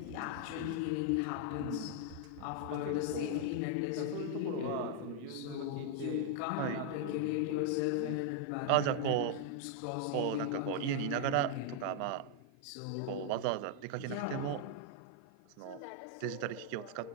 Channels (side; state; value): both; different; correlation 0.00